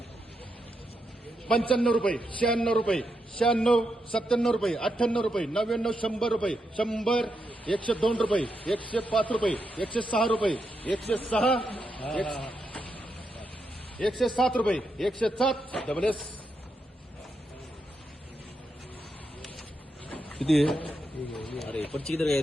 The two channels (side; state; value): both; normal; correlation 0.83